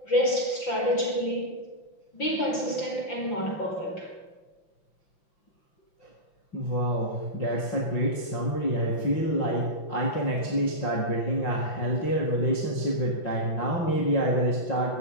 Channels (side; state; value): right; late; 5.8 ms